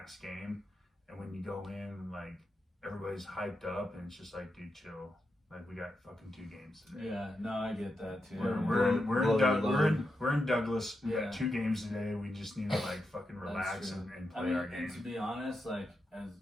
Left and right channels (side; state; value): both; normal; correlation 0.87